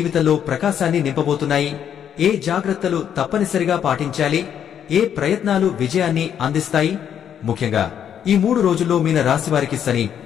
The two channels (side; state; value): right; quieter; 9.0 dB